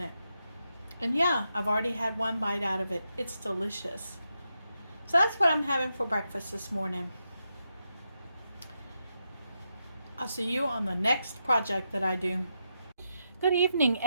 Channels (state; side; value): inverted; both; correlation -0.85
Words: And yeah, I've already had 1 bite out of it. It's delicious. So that's what I'm having for breakfast this morning. I'll see you on the next project that I do. Good evening,